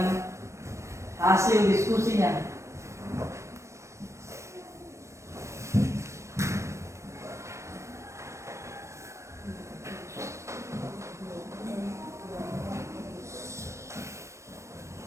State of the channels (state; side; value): late; left; 0.14 ms